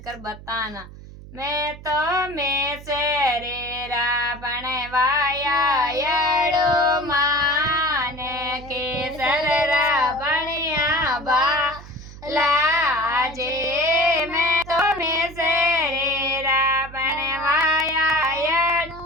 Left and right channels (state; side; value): noise; right; hum, 16 dB below the sound